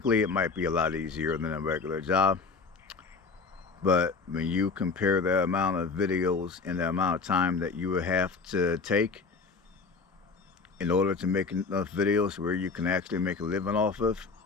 it might be a lot easier than a regular job. But when you compare the amount of videos and the amount of time that you would have to take in order to make enough videos where you can actually make a living off of,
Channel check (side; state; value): right; quieter; 4.6 dB